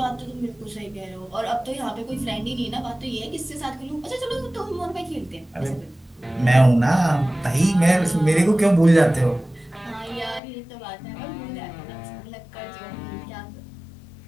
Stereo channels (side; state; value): right; drops out; at 10.4 s